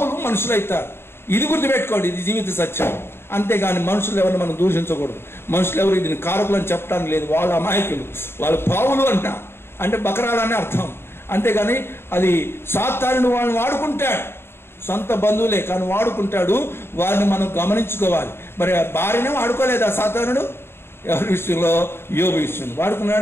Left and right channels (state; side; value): late; right; 0.11 ms